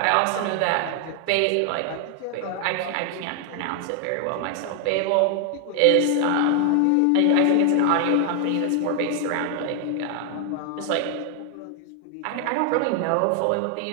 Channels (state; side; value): different; both; correlation 0.00